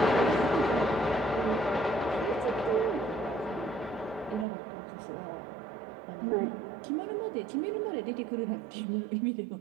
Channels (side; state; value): left; drops out; at 4.5 s